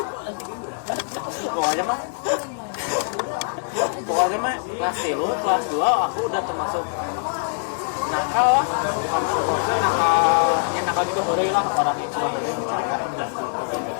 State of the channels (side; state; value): right; silent; digital silence